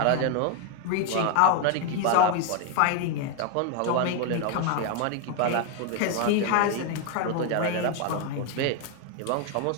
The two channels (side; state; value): both; different; correlation 0.01